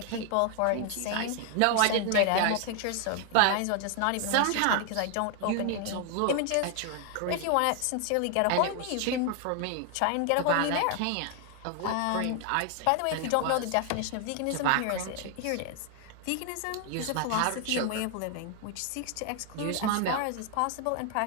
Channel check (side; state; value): both; different; correlation 0.00